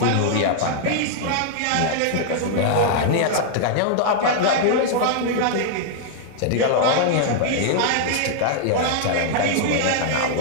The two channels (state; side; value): different; both; correlation -0.01